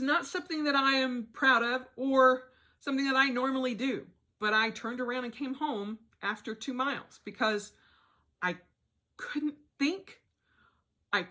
not something that I am proud of or something that I normally do. But I turned around and came home after 2 miles because I couldn't think.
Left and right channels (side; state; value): both; identical; correlation 1.00